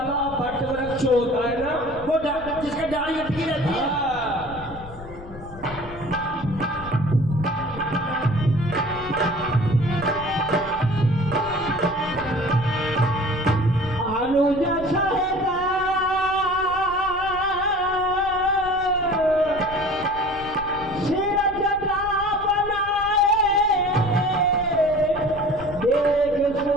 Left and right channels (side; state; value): left; noise; rumble, 16 dB below the sound